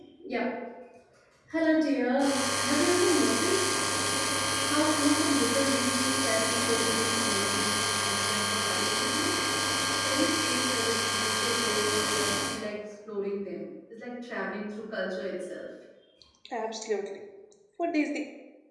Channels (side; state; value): both; identical; correlation 1.00